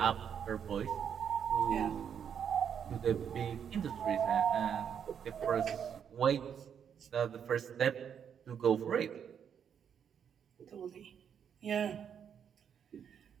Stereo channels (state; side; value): quieter; left; 8.0 dB